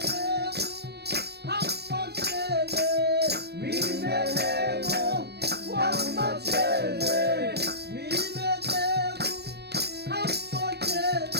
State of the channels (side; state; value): left; late; 0.47 ms